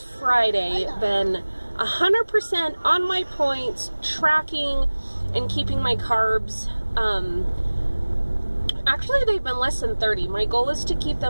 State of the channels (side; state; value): both; inverted; correlation -1.00